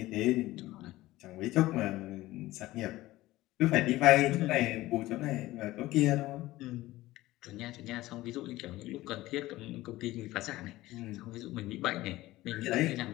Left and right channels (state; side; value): quieter; right; 17.4 dB